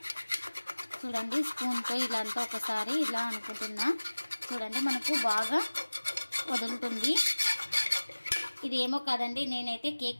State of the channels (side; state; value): both; inverted; correlation -1.00